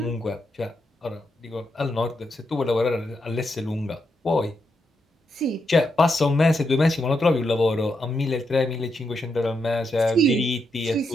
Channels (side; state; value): both; normal; correlation 0.82